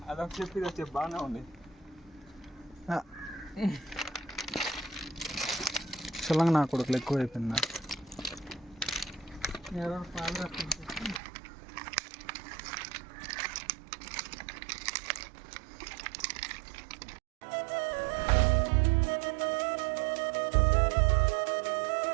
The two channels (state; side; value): drops out; left; at 11.2 s